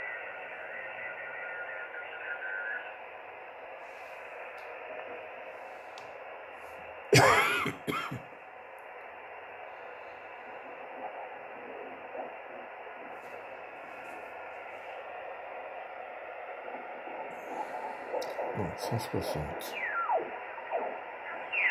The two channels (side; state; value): both; identical; correlation 1.00